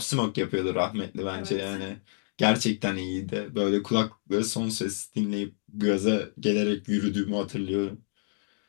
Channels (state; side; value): silent; right; digital silence